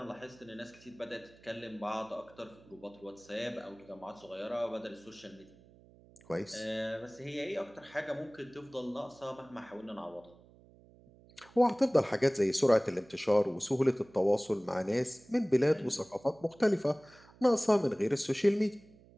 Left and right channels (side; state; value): right; noise; hum, 25 dB below the sound